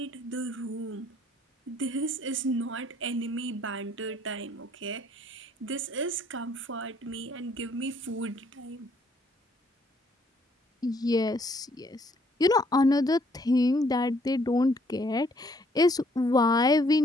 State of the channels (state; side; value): normal; both; correlation 0.65